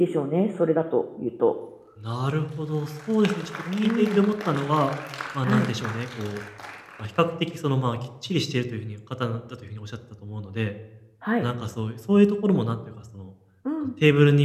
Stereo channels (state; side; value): identical; both; correlation 1.00